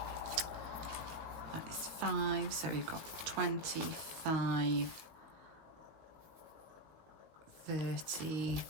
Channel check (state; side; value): late; left; 19 ms